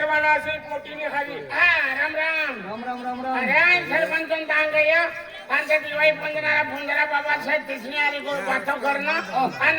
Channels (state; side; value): identical; both; correlation 1.00